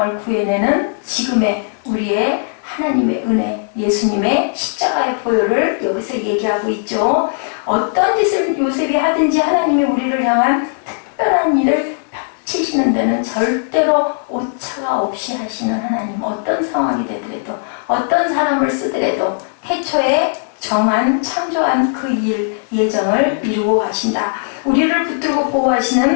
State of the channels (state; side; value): silent; right; digital silence